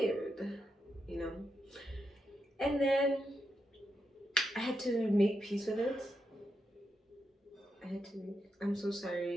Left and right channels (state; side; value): normal; both; correlation 0.84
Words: You know? And then I had to make peace with it. I'm so